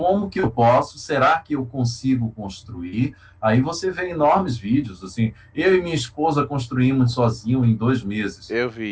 que eu posso, será que eu consigo construir? Aí você vê enormes vídeos, assim, eu e minha esposa construímos sozinho em 2 meses. Eu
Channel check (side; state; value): both; identical; correlation 1.00